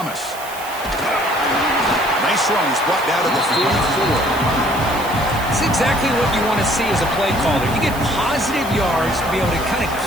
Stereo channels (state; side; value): noise; right; hiss, 14 dB below the sound